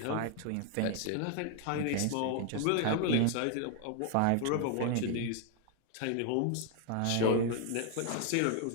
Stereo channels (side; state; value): both; different; correlation 0.00